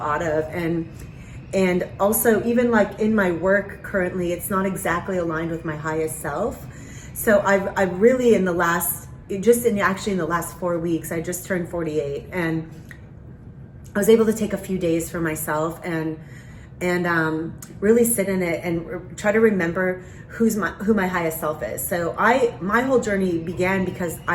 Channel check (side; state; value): both; identical; correlation 1.00